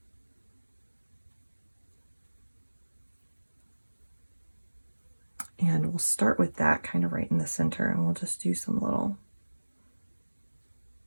And we'll start with that kind of right in the center, and we'll just do some little,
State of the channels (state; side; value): inverted; both; correlation -1.00